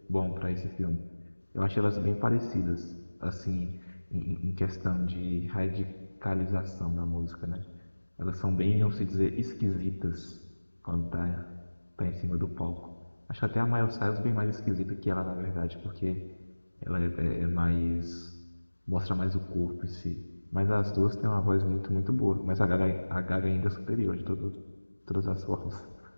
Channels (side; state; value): both; inverted; correlation -1.00